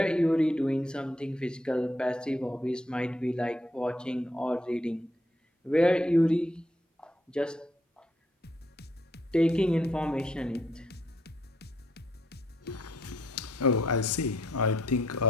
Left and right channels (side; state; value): both; normal; correlation 0.72